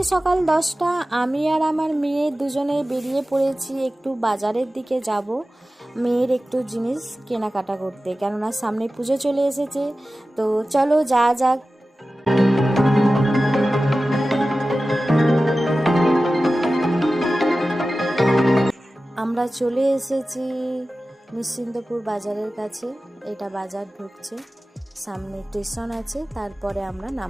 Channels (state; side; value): normal; both; correlation 0.95